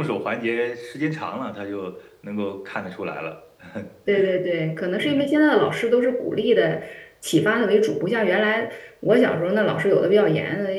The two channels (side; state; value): both; identical; correlation 1.00